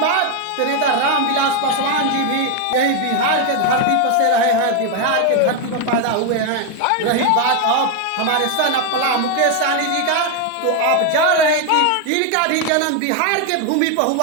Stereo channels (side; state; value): both; different; correlation 0.01